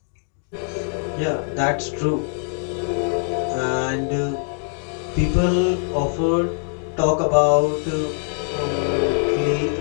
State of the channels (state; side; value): silent; right; digital silence